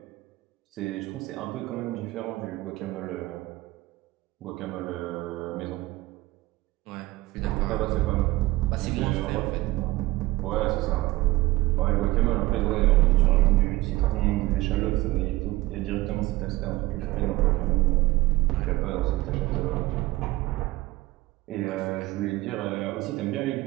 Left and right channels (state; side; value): quieter; left; 18.9 dB